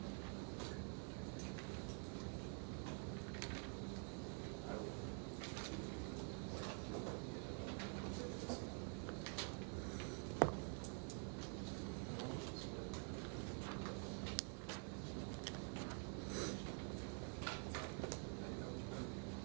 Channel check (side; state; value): left; quieter; 39.8 dB